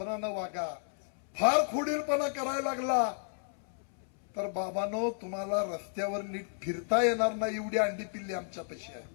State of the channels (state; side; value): silent; right; 56 dB below the other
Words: वागा. फार खोडीलपणा करायला लागला तर बाबांनो, तुम्हाला रस्त्यावर नीट फिरता येणार नाही. एवढी अंडी पिल्ली आमच्यापाशी आहे.